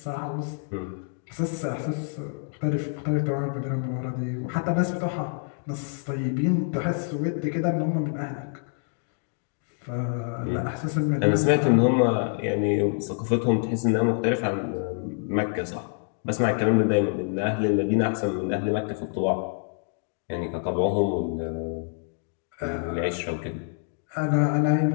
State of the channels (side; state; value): right; silent; 60 dB below the other